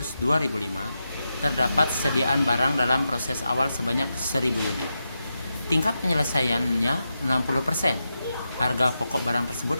2005, terdapat sediaan barang dalam proses awal sebanyak 1000 unit. Tingkat penyelesaiannya 60%. Harga pokok barang tersebut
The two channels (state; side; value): inverted; both; correlation -0.88